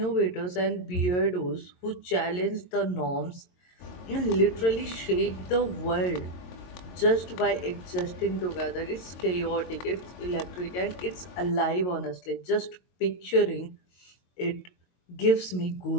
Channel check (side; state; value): right; late; 22 ms